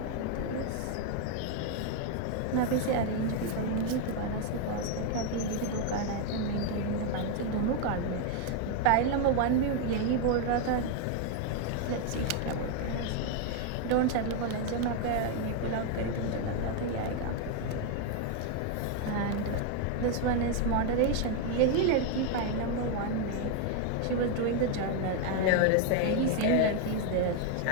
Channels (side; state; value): both; different; correlation 0.01